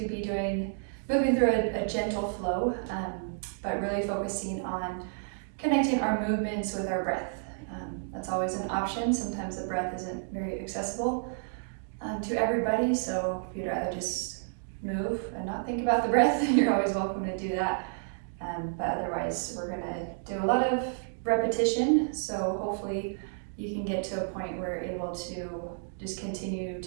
be moving through a gentle flow, but really focusing on connecting our movements with our breath. That's always an option. Sometimes the breath isn't very accessible to everybody, so if you'd rather just move and not think about the breath, you're always welcome to do that. But otherwise, we're going to do a lot of repetition, so hopefully you can get to a point where you're able to just continue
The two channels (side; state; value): left; silent; digital silence